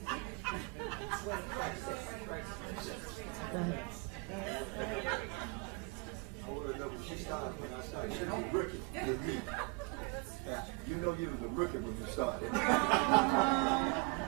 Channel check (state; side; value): quieter; left; 29.6 dB